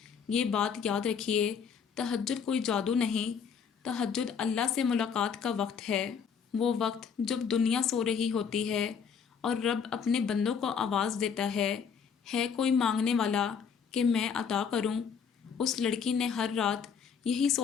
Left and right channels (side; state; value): right; quieter; 6.7 dB